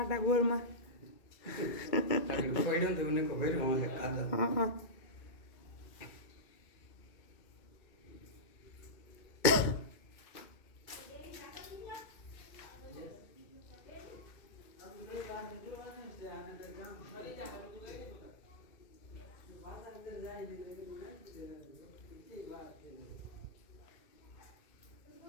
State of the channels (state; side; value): late; right; 2.2 ms